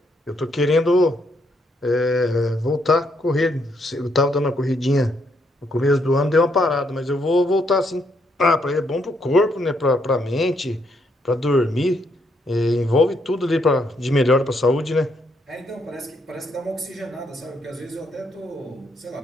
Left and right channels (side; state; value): both; normal; correlation 0.75